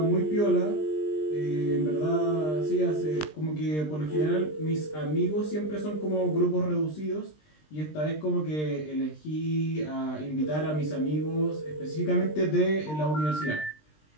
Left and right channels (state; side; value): late; right; 20 ms